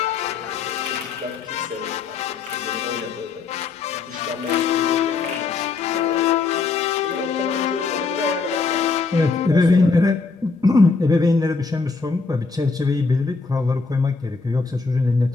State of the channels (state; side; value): quieter; right; 4.4 dB